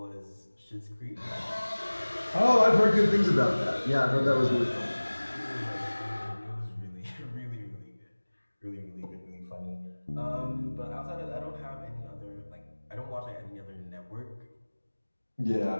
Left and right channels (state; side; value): inverted; both; correlation -1.00